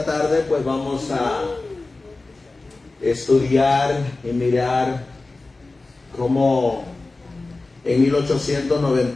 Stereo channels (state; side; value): quieter; right; 3.3 dB